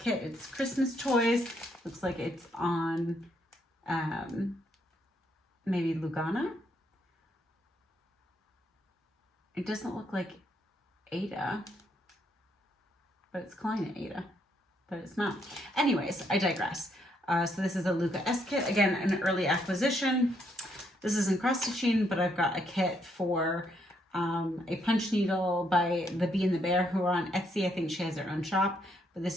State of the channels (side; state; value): both; normal; correlation 0.74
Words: It's Christmas toys. Looks like it's on maybe Lugana. It doesn't look like Aida, but it's Klein Aida, but it's not. Anyways, I digress. So this is a Luca S kit. Again, an early acquisition. This isn't cross stitching, but I've got a kit for a punch needle by the Bee and the Bear, who are on Etsy. I think she has her own shop, but